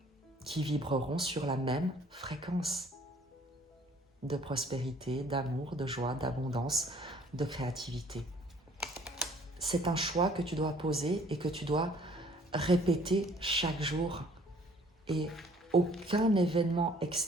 qui vibreront sur la même fréquence de prospérité, d'amour, de joie, d'abondance, de créativité. C'est un choix que tu dois poser et que tu dois répéter chaque jour. Et aucun événement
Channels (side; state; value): both; normal; correlation 0.57